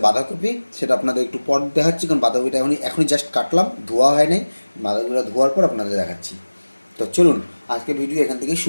বাঁধাকপি। সেটা আপনাদের একটু পর দেখাচ্ছি, কারণ বাঁধাকপিটা এখনই জাস্ট কাটলাম, ধোয়া হয় নাই। বাঁধাকপিটা ধোয়ার পর আপনাদের দেখাচ্ছি। তো চলুন আজকে ভিডিও এখান থেকে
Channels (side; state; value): both; inverted; correlation -1.00